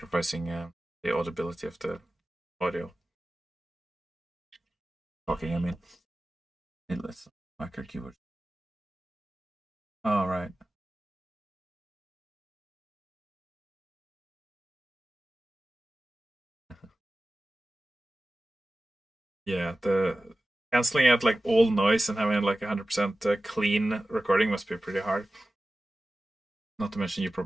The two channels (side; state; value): both; normal; correlation 0.95